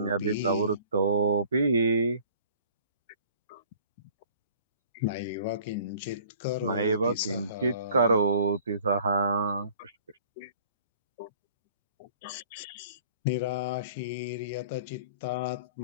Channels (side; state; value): both; inverted; correlation -0.51